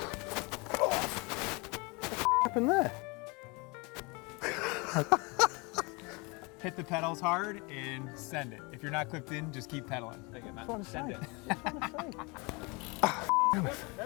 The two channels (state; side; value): quieter; right; 28.3 dB